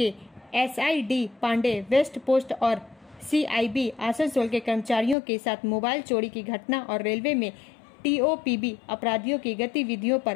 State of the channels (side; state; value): right; drops out; at 5.2 s